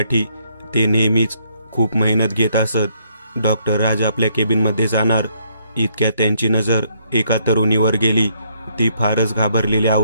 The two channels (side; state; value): both; inverted; correlation -0.70